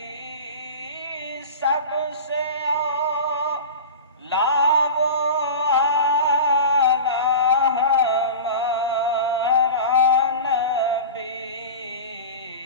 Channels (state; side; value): inverted; both; correlation -0.31